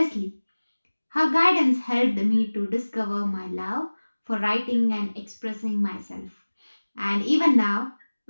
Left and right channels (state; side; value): inverted; both; correlation -1.00